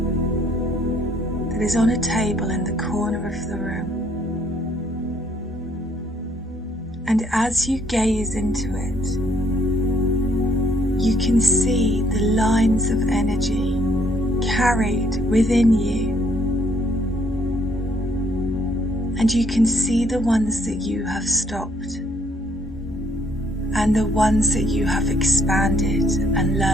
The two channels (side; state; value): both; normal; correlation 0.67